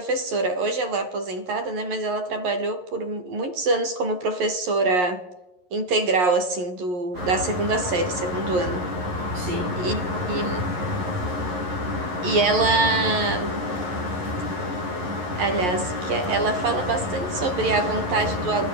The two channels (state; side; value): late; left; 11 ms